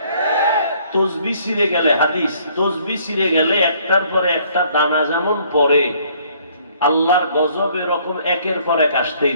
তসবিহ ছিঁড়ে গেলে, হাদিস, তসবিহ ছিঁড়ে গেলে একটার পরে একটা দানা যেমন পড়ে, আল্লাহর গজব এরকম একের পর এক আসতেই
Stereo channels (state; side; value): inverted; both; correlation -0.62